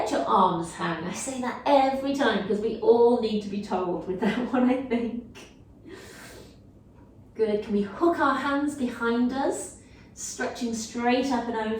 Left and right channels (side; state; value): both; identical; correlation 1.00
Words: your arms hang. I say that every time because we all need to be told with that one, I think. Good, can we hook our hands behind us, stretching straight up and